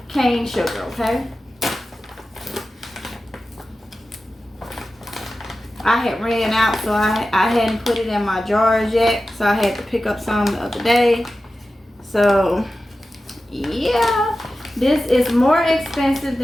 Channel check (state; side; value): normal; both; correlation 0.94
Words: cane sugar, okay? I had ran out, so I hadn't put it in my jars yet, so I had to pick up some the other day. So yeah, this is more expensive